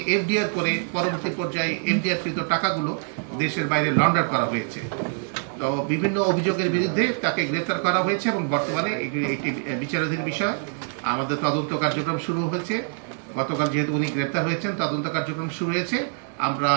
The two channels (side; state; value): left; silent; 62 dB below the other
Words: এফডিআর করে পরবর্তী পর্যায়ে এফডিআর কৃত টাকাগুলো দেশের বাইরে লন্ডার করা হয়েছে। তো বিভিন্ন অভিযোগের বিরুদ্ধে তাকে গ্রেফতার করা হয়েছে এবং বর্তমানে একটি বিচারাধীন বিষয়। আমাদের তদন্ত কার্যক্রম শুরু হয়েছে। গতকাল যেহেতু উনি গ্রেফতার হয়েছেন তদন্ত কার্যক্রম শুরু হয়েছে। আমরা